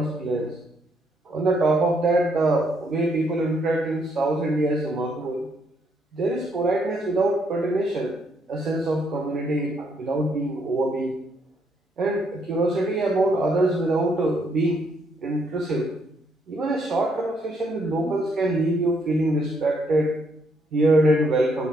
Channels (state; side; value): normal; both; correlation 0.72